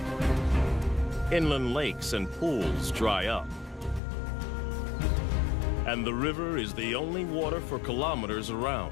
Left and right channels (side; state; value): right; drops out; at 4.0 s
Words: Inland lakes and pools dry up. And the river is the only water for kilometers